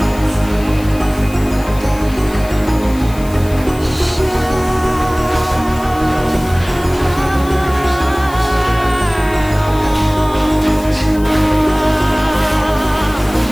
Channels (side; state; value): left; noise; hiss, 19 dB below the sound